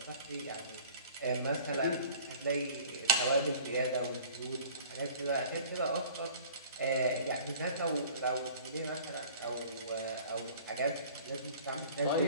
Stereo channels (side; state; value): both; inverted; correlation -0.47